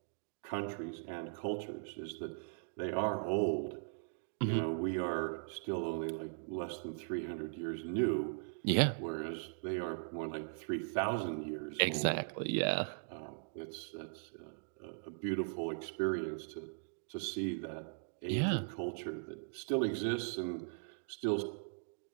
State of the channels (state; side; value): silent; left; digital silence